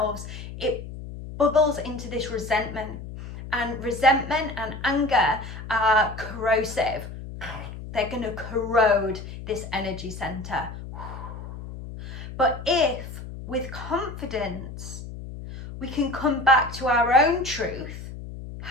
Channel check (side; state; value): left; noise; hum, 11 dB below the sound